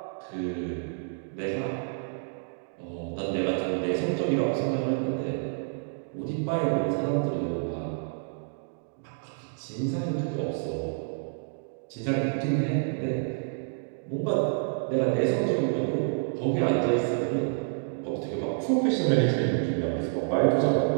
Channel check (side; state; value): left; silent; digital silence